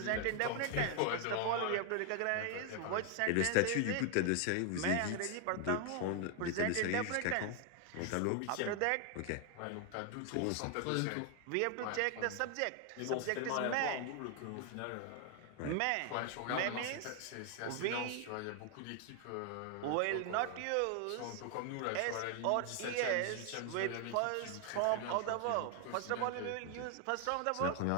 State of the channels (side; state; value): both; different; correlation 0.00